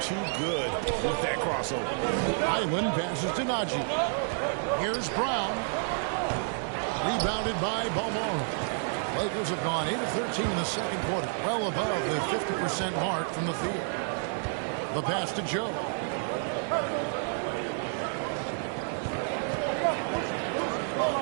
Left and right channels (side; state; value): left; silent; 58 dB below the other